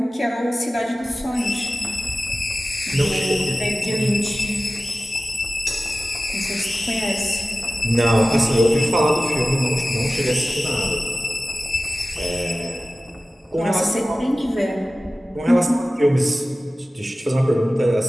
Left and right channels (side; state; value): both; normal; correlation 0.96